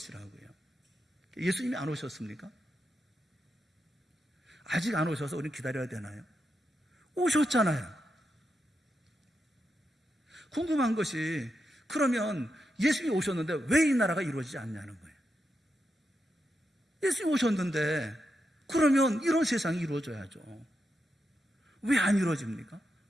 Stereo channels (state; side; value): normal; both; correlation 0.86